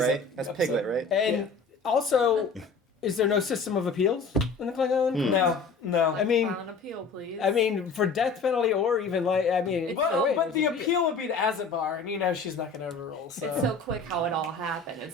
That's Piglet, right? and also, is there no system of appeals in the Klingon? No. I mean, File an appeal, please. for death penalty or even But the appeal would be to Azerbaija, and she's not going to overrule. So. It's so quick how it all happened.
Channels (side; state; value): right; quieter; 4.4 dB